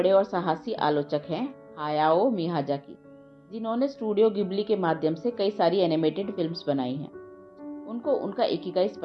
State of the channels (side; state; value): both; identical; correlation 1.00